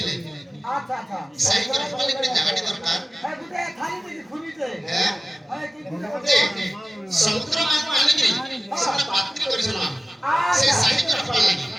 আচ্ছা আচ্ছা সাহি করে বলে করে জায়গাটি দরকার হ্যাঁ গুটে খালি দিদি খুনিতে হ্যাঁ হ্যাঁ কি যে সমুদ্র মাত্র আনি কি সেটা পাত্রী করেছিল সে সাহি করে লাগি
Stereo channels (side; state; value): both; normal; correlation 0.97